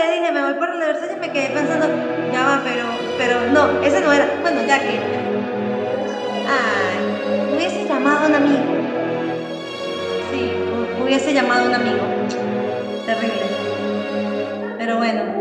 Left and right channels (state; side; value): identical; both; correlation 1.00